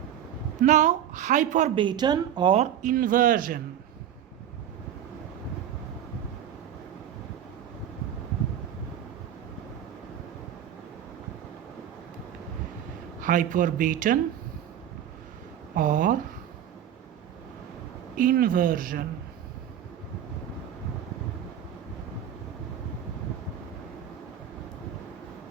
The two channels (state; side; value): quieter; left; 10.0 dB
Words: Now hyperbaton or inversion. Hyperbaton or inversion.